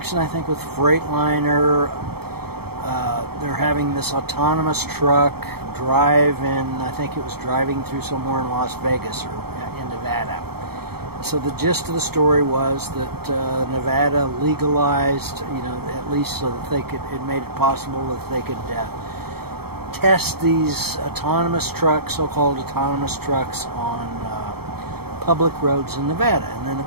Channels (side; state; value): left; late; 0.96 ms